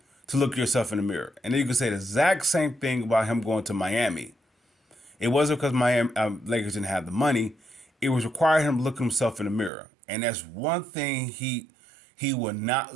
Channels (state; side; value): drops out; left; at 9.7 s